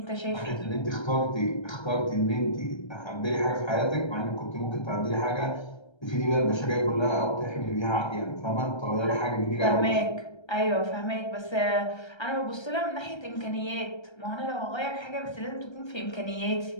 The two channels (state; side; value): late; right; 1.3 ms